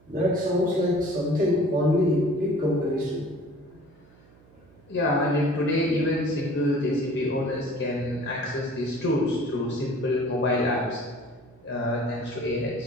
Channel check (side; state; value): right; noise; hum, 27 dB below the sound